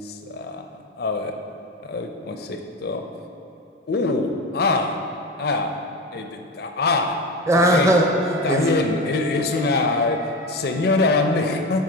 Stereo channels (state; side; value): normal; both; correlation 0.23